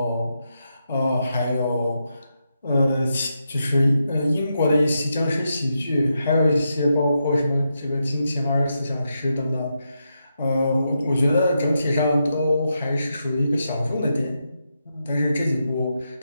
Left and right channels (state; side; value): inverted; both; correlation -0.85